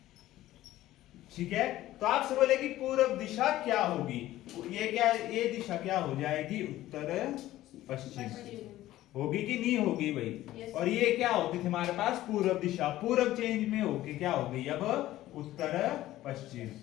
ठीक है। तो आपसे बोले कि पूर्व दिशा क्या होगी, ये क्या, ये दिशा क्या हो जाएगी, उत्तर पश्चिम होगी कि नहीं होगी भाई। और ये क्या होती थी हमारे पास पूर्व दिशा, पूर्व चेंज में होके क्या हो गई अब उत्तर पश्चिम।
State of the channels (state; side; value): quieter; right; 15.0 dB